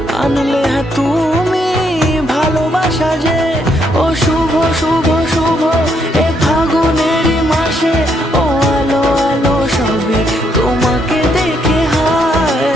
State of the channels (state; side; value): normal; both; correlation 0.74